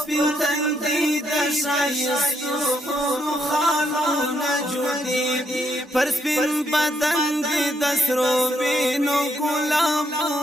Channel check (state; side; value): normal; both; correlation 0.75